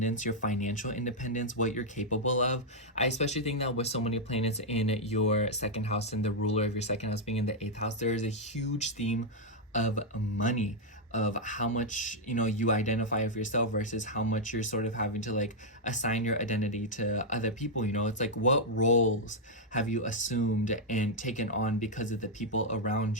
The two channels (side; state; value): both; normal; correlation -0.02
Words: your financial independence, what you're capable of. I especially think that with so many planets in your second house and the ruler of your second house being in the eighth house, there is a huge theme of money, of how much, you know, you identify of yourself versus how much you're sort of having to like assign your identity to other people. You know, it's like, what roles have you assumed and taken on because of the people around